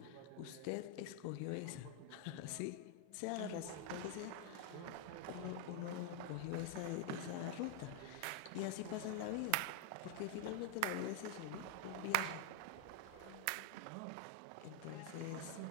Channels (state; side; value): different; both; correlation 0.00